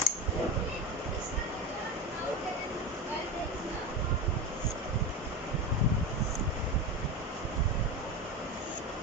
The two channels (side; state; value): both; normal; correlation 0.23